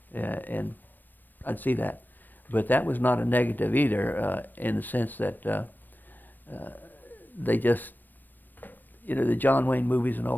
And I'd see that. But that was not a negative either, in the sense that they just, the John Wayne movies and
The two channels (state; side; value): late; right; 0.091 ms